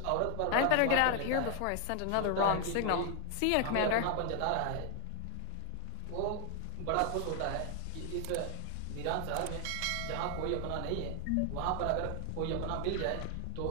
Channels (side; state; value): both; different; correlation 0.00